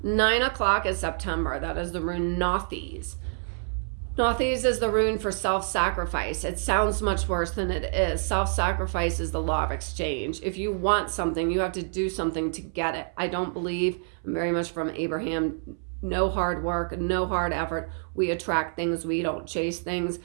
9 o'clock is September. That is the rune Nothes. Nothes is the rune for self-sacrifice. It sounds much worse than it is. Self-sacrifice is the law of exchange. If you want something, you have to do something to get it. I don't believe, I'm very much from Abraham, no hard work, no hard effort. We attract things, we don't chase things.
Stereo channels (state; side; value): silent; left; 60 dB below the other